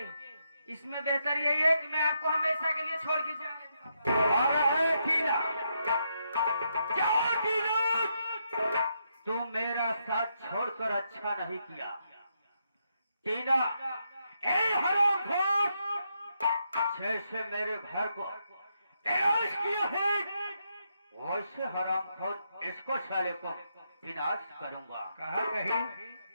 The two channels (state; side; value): inverted; both; correlation -0.80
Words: इसमें बेहतर यही है कि मैं आपको हमेशा के लिए छोड़ के जाने। अरे टीना, जाओ टीना, तुम मेरा साथ छोड़कर अच्छा नहीं किया। टीना, ए हरामखोर, जैसे मेरे घर को ऐश किया है वैसे हरामखोर इसको साले को विनाश करूंगा। कहा कहीं